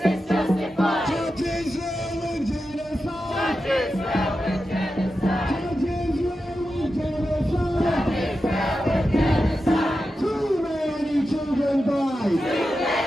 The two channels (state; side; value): normal; both; correlation 0.90